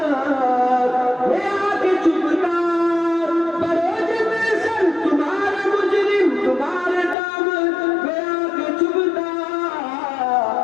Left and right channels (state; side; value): drops out; right; at 7.2 s